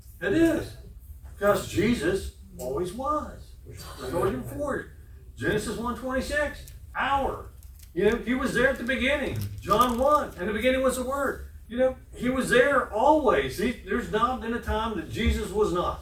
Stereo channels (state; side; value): identical; both; correlation 1.00